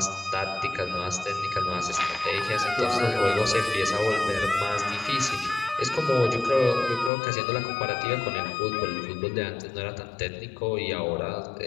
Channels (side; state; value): right; drops out; at 7.1 s